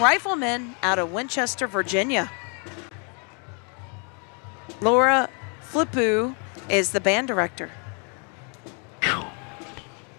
out of Winchester, Virginia. Laura Flippu is the band director. So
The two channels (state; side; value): quieter; right; 37.6 dB